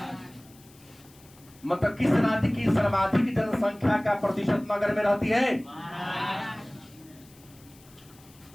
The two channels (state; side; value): noise; left; hiss, 26 dB below the sound